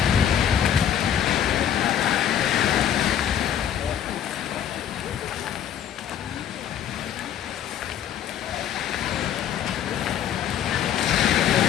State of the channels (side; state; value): right; quieter; 9.7 dB